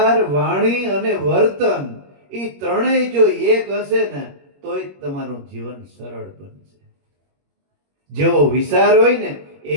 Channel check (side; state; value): left; late; 21 ms